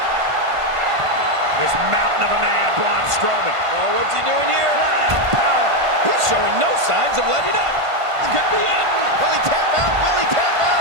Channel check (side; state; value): left; late; 1.5 ms